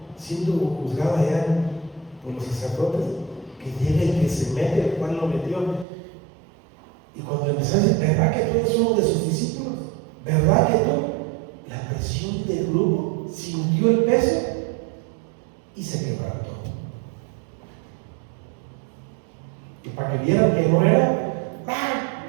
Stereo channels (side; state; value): left; drops out; at 5.9 s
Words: siendo juzgado allá por los sacerdotes, que llega y que se mete, el cual lo metió. Y cuando empezó a decir, ¿verdad que tú eres uno de sus discípulos? ¿Verdad que tú? La presión del grupo sintió el peso y se quebrantó. Y para que vieran que no era,